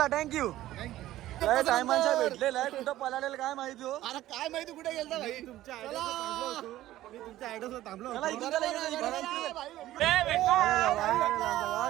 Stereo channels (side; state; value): left; quieter; 14.7 dB